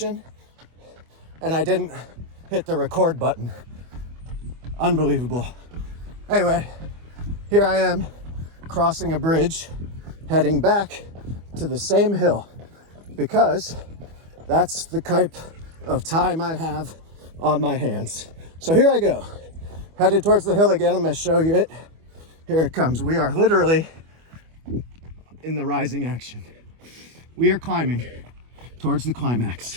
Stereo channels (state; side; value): late; left; 25 ms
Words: and I didn't hit the record button. Unbelievable. Anyway, here I am crossing a bridge, heading back to the same hill, because that's the type of time I have on my hands. So here I go, headed towards the hill again. I'm going to show you it. Here it comes. We are literally in the rising action. We are climbing towards the